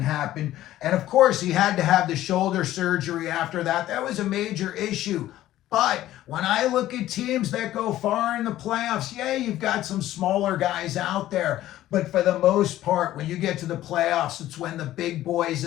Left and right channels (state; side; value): quieter; right; 14.1 dB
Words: happen. And of course, he had to have the shoulder surgery after that. That was a major issue. But when I look at teams that go far in the playoffs, yeah, you've got some smaller guys out there. But for the most part, when you get to the playoffs, it's when the big boys